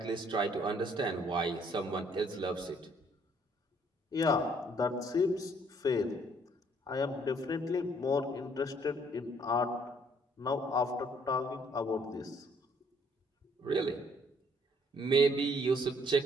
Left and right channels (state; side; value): normal; both; correlation 0.64